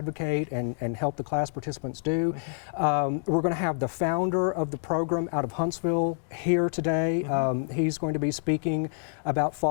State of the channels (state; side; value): silent; right; 59 dB below the other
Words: and help the class participants do. We're going to have the founder of the program out of Huntsville here today. He's going to be speaking about